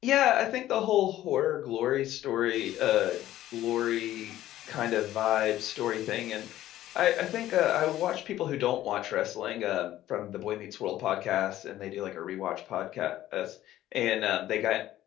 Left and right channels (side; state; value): right; quieter; 13.8 dB